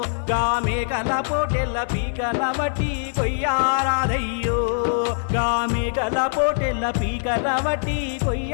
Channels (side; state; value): right; silent; digital silence